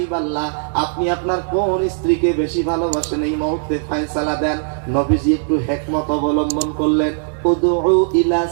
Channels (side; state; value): left; silent; digital silence